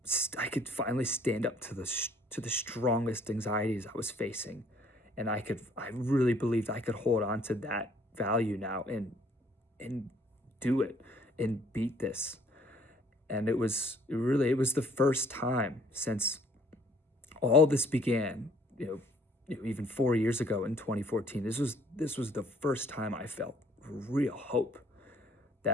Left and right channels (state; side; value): normal; both; correlation 0.60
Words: stand up to the strongest anxieties I was facing, and I really believed I could hold on to that value now and do it and beat this. And it was the first time since all this began, even 4 years ago in 2014. This was the first time I felt real hope